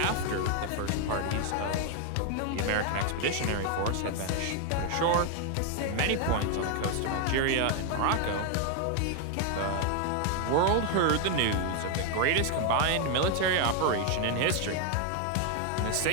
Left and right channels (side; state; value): both; different; correlation 0.01